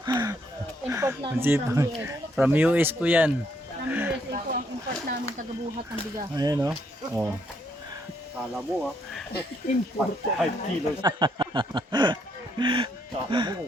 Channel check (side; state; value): both; normal; correlation 0.73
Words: Import Ang namin sipag. From US po yan. From USA po ang import namin tagabuhat ng bigas. Ayan o. Oh. Kala mo import 5 kilos. Kala mo